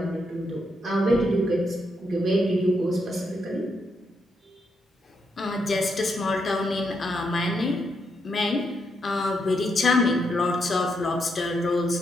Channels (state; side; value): normal; both; correlation 0.80